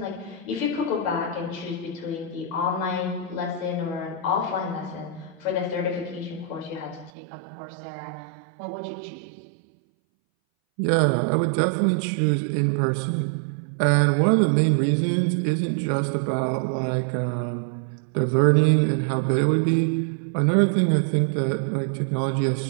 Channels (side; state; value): left; drops out; at 7.1 s